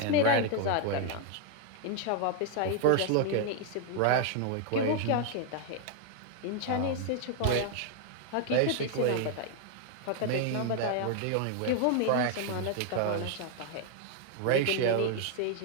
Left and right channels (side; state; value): both; different; correlation 0.00